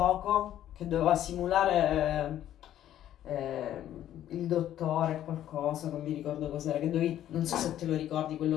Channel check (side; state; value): right; quieter; 11.8 dB